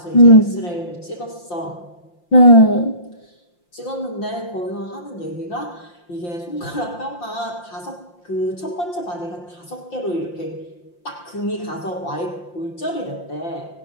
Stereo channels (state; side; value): late; right; 5.7 ms